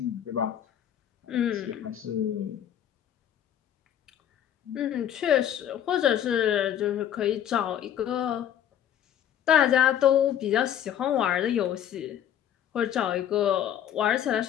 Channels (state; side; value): quieter; right; 10.3 dB